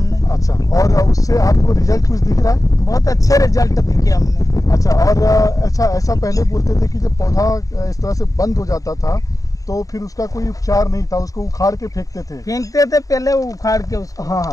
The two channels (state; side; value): late; right; 0.16 ms